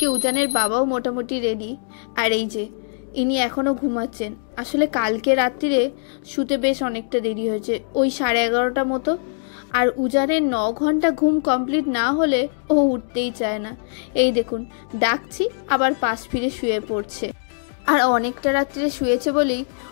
উজানের বাবাও মোটামুটি রেডি। আর এই যে ইনি এখনও ঘুমাচ্ছেন। আসলে কালকে রাত্রিরে শুতে বেশ অনেকটা দেরি হয়েছে, ওই 11:30 মতো। আর উজানের 9 ঘন্টা ঘুম কমপ্লিট না হলে ও উঠতেই চায় না। এই দেখুন, ডাকছি আবার পাশ ফিরে শুয়ে পড়ছে। আর অনেকটা রাত্রিরে শুয়েছে বলেই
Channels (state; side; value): silent; right; digital silence